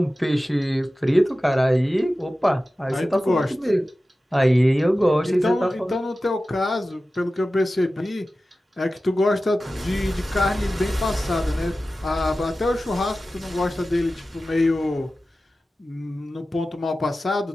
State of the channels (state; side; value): normal; both; correlation 0.95